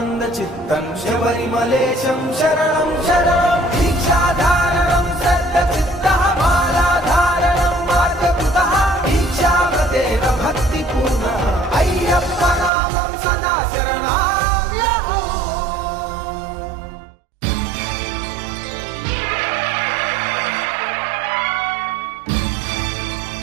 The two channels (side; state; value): left; drops out; at 12.7 s